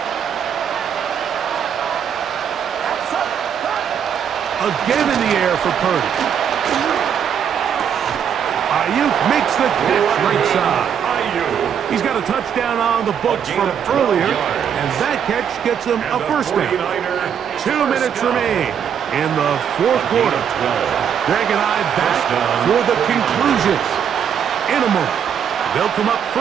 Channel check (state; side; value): quieter; left; 8.2 dB